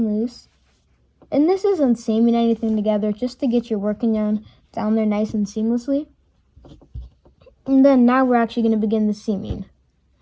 loose. And this isn't seaming anything together, just to get your working yarn down there nice and seamlessly. And then now we're actually going to begin the seaming.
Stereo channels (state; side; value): identical; both; correlation 1.00